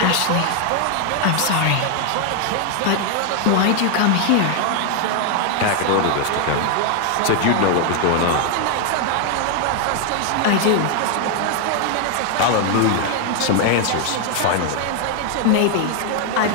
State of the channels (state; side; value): different; both; correlation 0.00